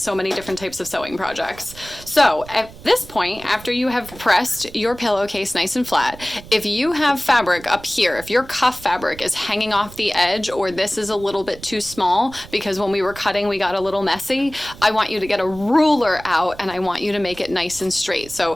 many different types of sewing projects. So at this point, after you have pressed your pillowcase nice and flat, if you have fabric up here, if your cuff fabric is hanging off the edge, or this is a little bit too small because when we were cutting we got a little messy, I want you to get a ruler out and I want you to make it nice and straight. So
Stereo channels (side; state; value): right; noise; rumble, 18 dB below the sound